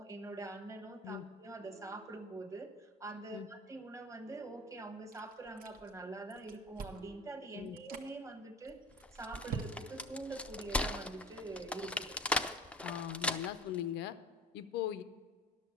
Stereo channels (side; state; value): both; normal; correlation 0.37